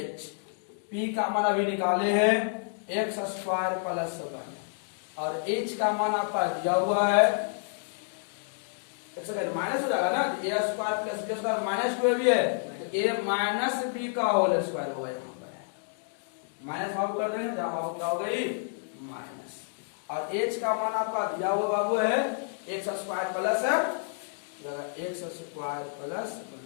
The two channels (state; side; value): silent; right; digital silence